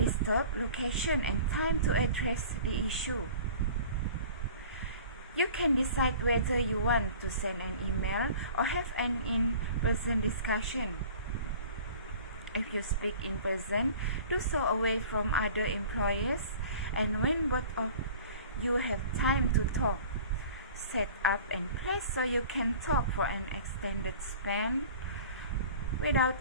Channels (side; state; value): both; inverted; correlation -0.44